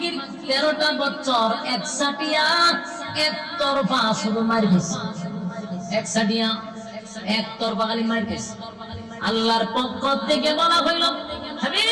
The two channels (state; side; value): identical; both; correlation 1.00